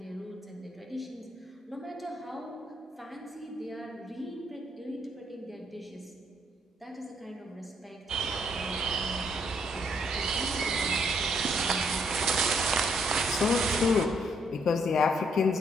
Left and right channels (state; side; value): normal; both; correlation 0.71